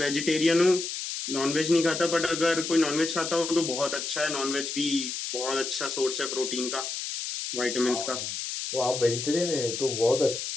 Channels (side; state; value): left; noise; hiss, 5 dB below the sound